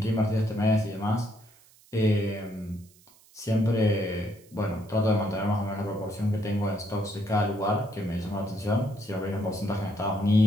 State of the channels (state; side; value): noise; right; hiss, 28 dB below the sound